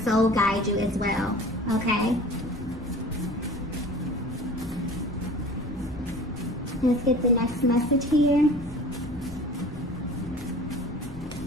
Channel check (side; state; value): left; noise; rumble, 13 dB below the sound